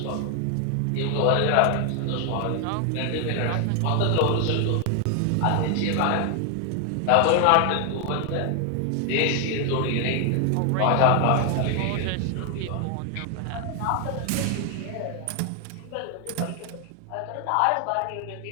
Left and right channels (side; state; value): both; different; correlation 0.00